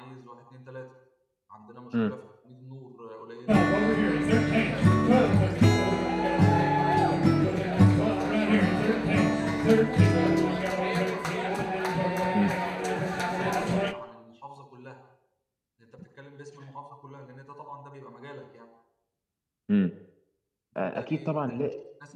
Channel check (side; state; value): both; identical; correlation 1.00